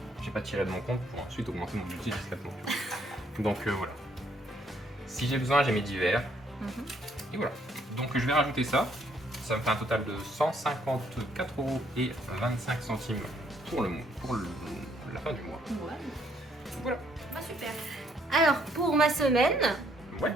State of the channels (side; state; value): both; normal; correlation 0.68